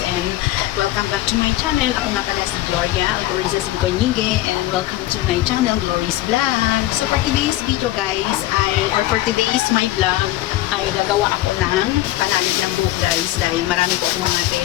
and welcome back to my channel. Ako nga pala si Gloria Alcoriza Sincoñigue and welcome to my channel, Glory's Vlog. So for today's video guys, for today's my vlog, ay nagawa ako ng panalig ng buhok guys dahil marami po akong mga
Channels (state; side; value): quieter; right; 15.8 dB